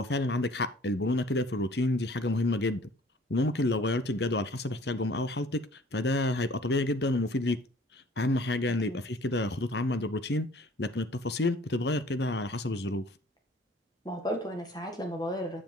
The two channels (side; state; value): both; normal; correlation 0.52